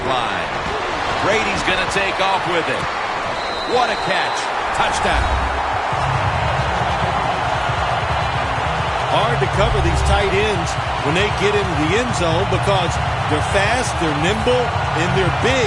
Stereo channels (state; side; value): identical; both; correlation 1.00